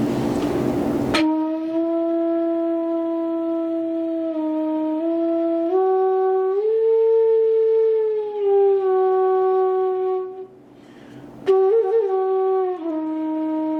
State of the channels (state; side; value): identical; both; correlation 1.00